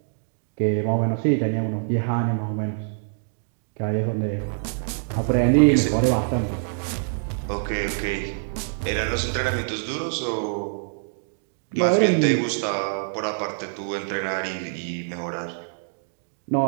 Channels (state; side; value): silent; left; digital silence